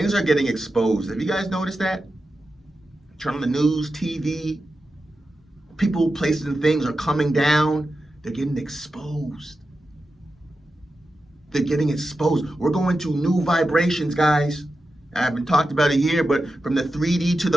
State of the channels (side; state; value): both; normal; correlation 0.91